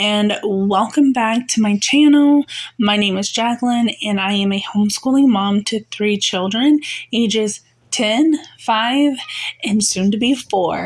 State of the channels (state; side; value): identical; both; correlation 1.00